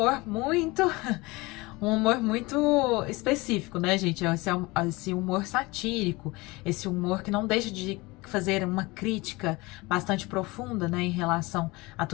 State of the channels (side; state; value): right; quieter; 23.1 dB